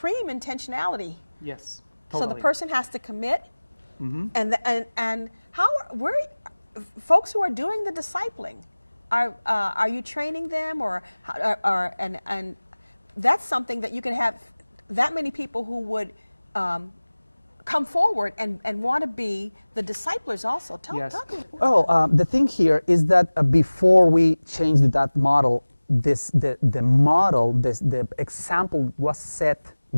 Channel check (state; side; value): inverted; both; correlation -1.00